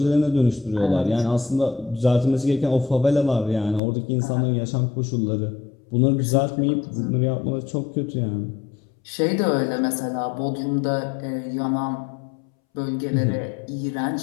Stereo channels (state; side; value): drops out; right; at 3.8 s